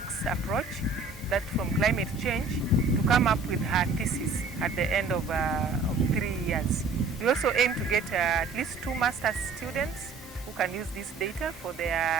approach, that from climate change, to come up with her thesis at the end of 3 years. We also aim to get at least 2 master's students who can use this data for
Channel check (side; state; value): left; quieter; 4.1 dB